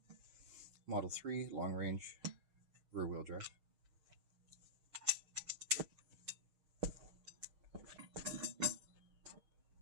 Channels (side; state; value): left; late; 6.6 ms